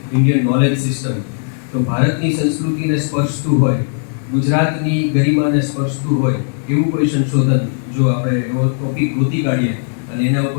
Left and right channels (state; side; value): silent; right; digital silence